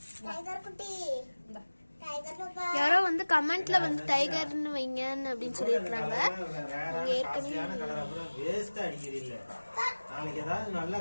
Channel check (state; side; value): inverted; both; correlation -1.00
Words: டைகர் குட்டி. இந்தா. டைகர் பாப்பா. யாரோ வந்து கமெண்ட்ல வந்து டைகர்னு வைங்கன்னு அப்படின்னு சொல்லியிருக்காங்க. வேஸ்டா அடிக்கிறது இல்ல. நாளைக்கு ஏதாவது நல்லா